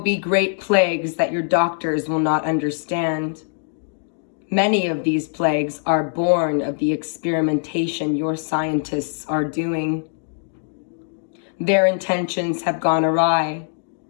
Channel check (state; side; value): silent; right; digital silence